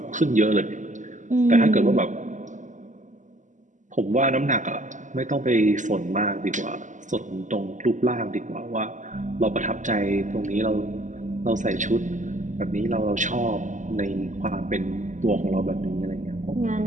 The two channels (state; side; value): late; left; 0.36 ms